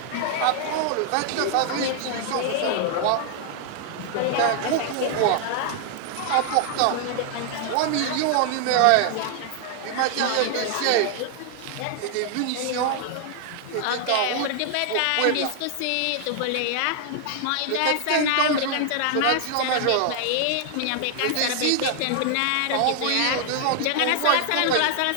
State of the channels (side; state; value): both; different; correlation 0.00